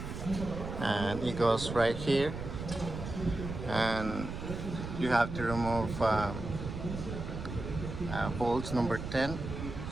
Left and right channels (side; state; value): right; noise; rumble, 7 dB below the sound